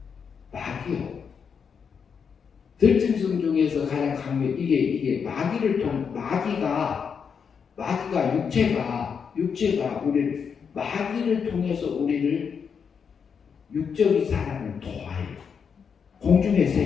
마귀요. 들짐승 중에서 가장 강력 이게 마귀를 통 마귀가 육체가 우리를 마귀를 통해서 우리를 육적인 사람을 도와요. 공중의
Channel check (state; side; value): quieter; right; 6.5 dB